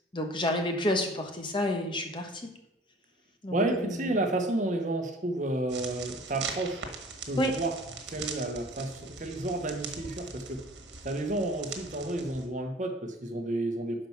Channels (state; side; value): normal; both; correlation 0.48